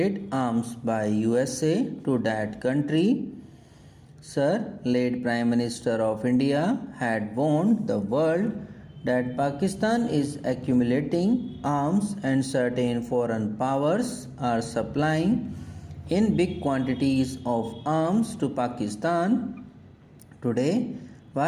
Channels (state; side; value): identical; both; correlation 1.00